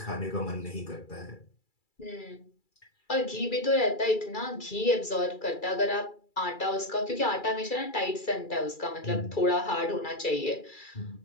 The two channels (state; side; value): late; right; 2.3 ms